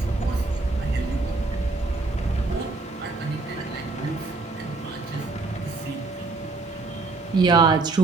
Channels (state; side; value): quieter; left; 3.5 dB